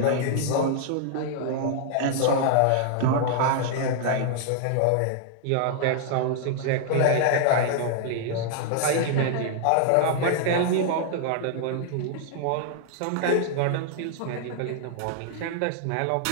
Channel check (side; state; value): both; different; correlation -0.01